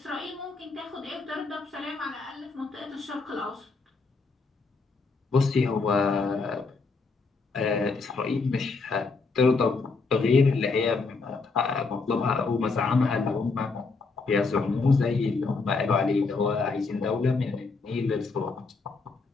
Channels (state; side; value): quieter; right; 4.2 dB